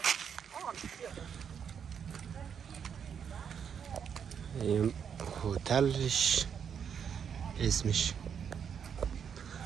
این هتلش اسمش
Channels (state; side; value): quieter; left; 7.5 dB